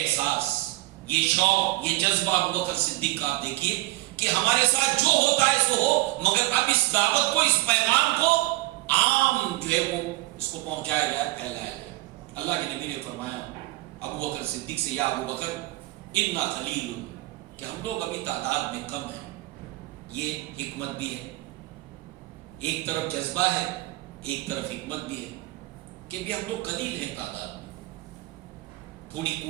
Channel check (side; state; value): left; quieter; 20.1 dB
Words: یہ شوق، یہ جذبہ ابو بکر صدیق کا آپ دیکھیے کہ ہمارے ساتھ جو ہوتا ہے سو ہو، مگر اب اس دعوت کو، اس پیغام کو عام جو ہے وہ اس کو پہنچایا جائے، پھیلایا جائے۔ اللہ کے نبی نے فرمایا ابو بکر صدیق سے، یا ابو بکر انا قلیل، کہ ہم لوگ ابھی تعداد میں کم ہیں۔ یہ حکمت بھی ہے، ایک طرف جذبہ ہے، ایک طرف حکمت بھی ہے کہ بھی ہم لوگ قلیل ہیں تعداد میں، تھوڑی